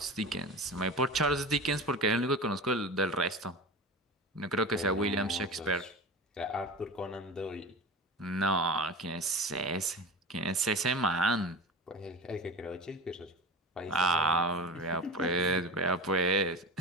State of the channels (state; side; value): normal; both; correlation 0.31